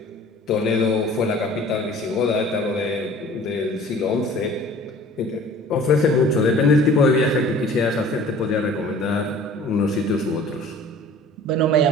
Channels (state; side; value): normal; both; correlation 0.47